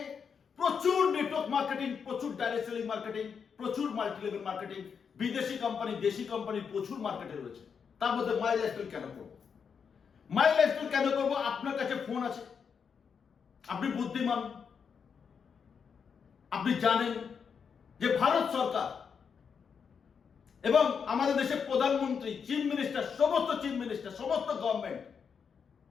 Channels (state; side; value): quieter; right; 6.5 dB